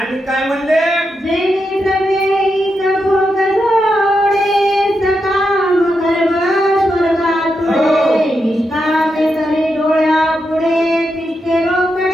काय म्हणले, जेणे प्रवेश भोग जोडे, सकाम गर्भ स्वर्गातुळे, निष्कामे करे डोळ्या पुढे, तिष्ठे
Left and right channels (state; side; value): normal; both; correlation 0.85